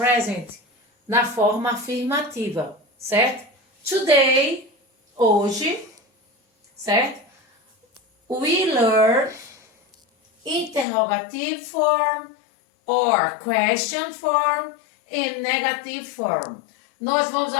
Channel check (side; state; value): right; drops out; at 10.9 s